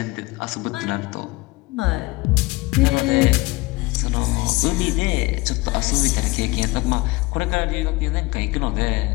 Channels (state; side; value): quieter; right; 22.0 dB